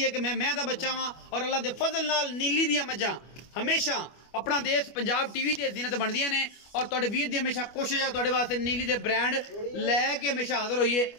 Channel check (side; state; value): right; late; 25 ms